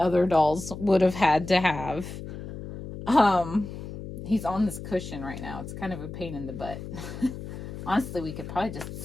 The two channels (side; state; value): left; noise; hum, 10 dB below the sound